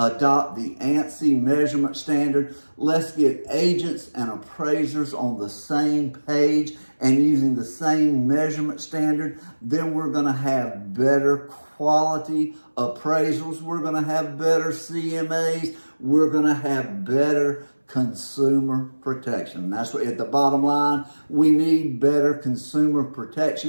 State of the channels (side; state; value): both; inverted; correlation -1.00